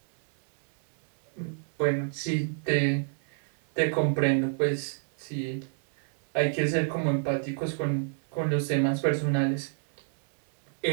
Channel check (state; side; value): silent; left; 59 dB below the other